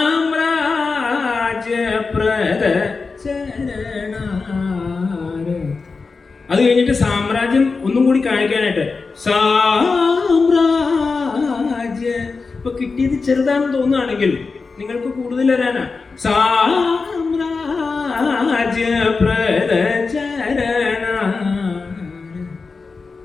ചരണാര. അത് കഴിഞ്ഞിട്ട് സാമ്രാജ്യം ഒന്നും കൂടി കാണിക്കാനായിട്ട് സാമ്രാജ്യ. ഇപ്പൊ കിട്ടിയത് ചെറുതാണെന്ന് തോന്നുകയാണെങ്കിൽ നിങ്ങൾക്ക് കൂടുതൽ വരാനാ. സാമ്രാജ്യപ്രദ ചരണാര.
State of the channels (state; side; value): quieter; right; 4.4 dB